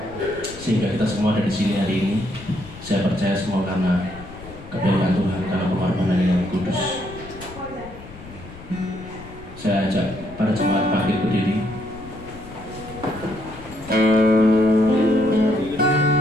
sehingga kita semua ada di sini hari ini. Saya percaya semua karena kebaikan Tuhan, karena pengorbanan yang kudus. Saya ajak para jemaat bangkit berdiri.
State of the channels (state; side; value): noise; left; rumble, 17 dB below the sound